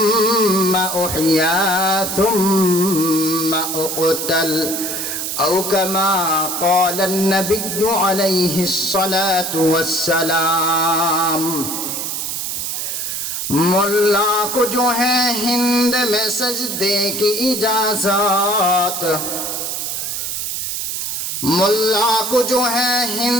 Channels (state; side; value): noise; right; hiss, 3 dB below the sound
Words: أحيا ثم أقتل أو كما قال النبي عليه الصلاة والسلام मुल्ला को जो है हिंद में सजदे की इजाजत मुल्ला को जो है